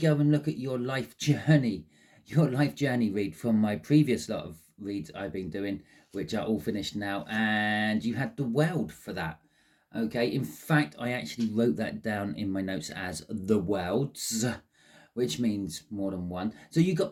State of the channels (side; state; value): both; identical; correlation 1.00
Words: and look at your life journey read from my previous lot of reads I've been doing, which are all finished now, and you had the world for that. Okay, in fact, I actually wrote that down in my notes as the worlds, which means more than one. So you